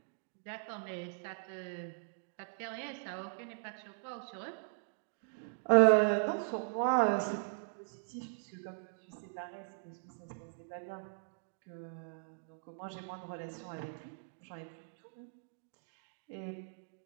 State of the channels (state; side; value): silent; left; digital silence